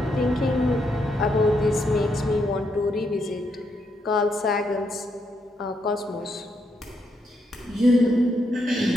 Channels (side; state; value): both; normal; correlation 0.78